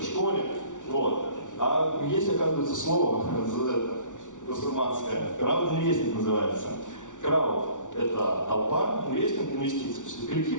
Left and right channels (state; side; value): late; right; 0.87 ms